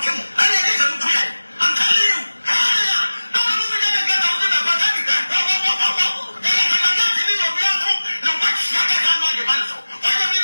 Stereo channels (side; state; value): both; inverted; correlation -1.00